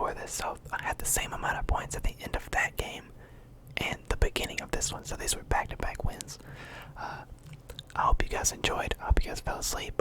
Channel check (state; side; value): identical; both; correlation 1.00